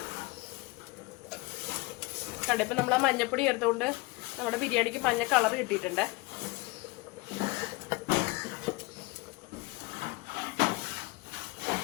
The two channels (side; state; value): right; quieter; 23.7 dB